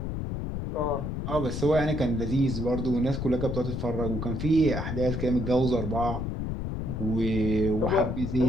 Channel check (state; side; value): noise; left; rumble, 4 dB below the sound